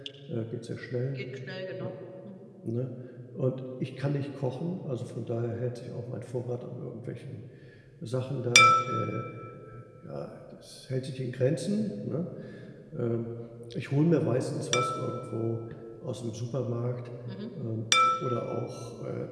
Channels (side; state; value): both; identical; correlation 1.00